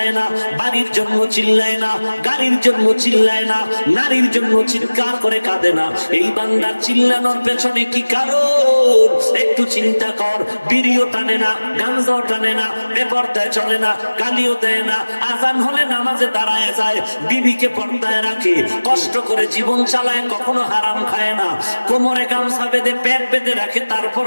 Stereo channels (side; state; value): both; inverted; correlation -1.00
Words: না, বাড়ির জন্য চিল্লায় না, গাড়ির জন্য চিল্লায় না, নারীর জন্য চিৎকার করে কাঁদে না। এই বান্দার চিল্লানোর পেছনে কি কারণ? একটু চিন্তা কর। বিড়িও টানে না, গাঞ্জাও টানে না, বেপরদায় চলে না, গালিও দেয় না, আজান হলে নামাজে দাঁড়ায় যায়, বিবিকে পর্দায় রাখে, কষ্ট করে জীবন চালায়, কখনো হারাম খায় না, কোমরে গামছা বেঁধে পেট বেঁধে রাখে,